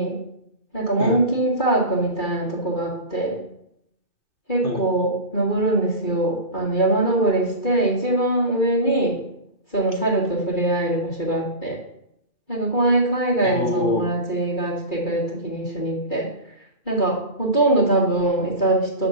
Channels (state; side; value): late; right; 2.3 ms